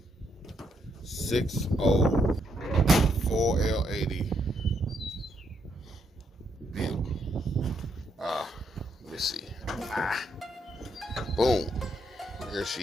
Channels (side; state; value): both; normal; correlation 0.76